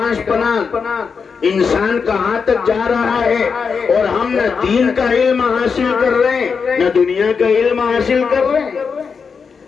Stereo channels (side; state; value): right; quieter; 5.7 dB